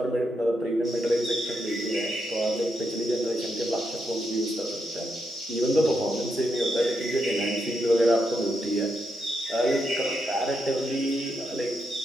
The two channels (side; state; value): both; normal; correlation 0.82